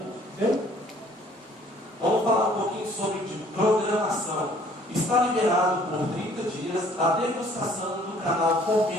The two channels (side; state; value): both; normal; correlation 0.57